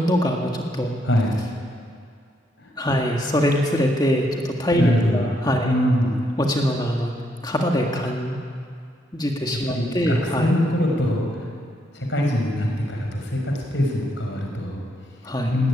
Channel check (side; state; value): both; normal; correlation 0.76